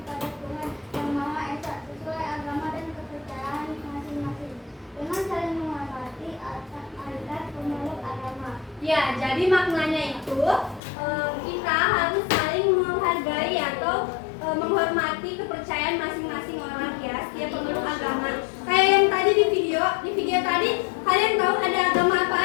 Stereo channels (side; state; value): right; drops out; at 10.8 s